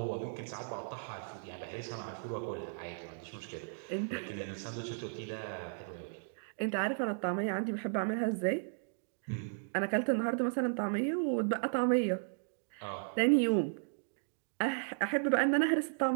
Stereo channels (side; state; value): left; silent; digital silence